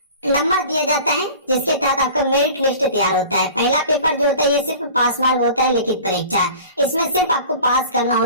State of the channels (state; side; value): inverted; both; correlation -0.42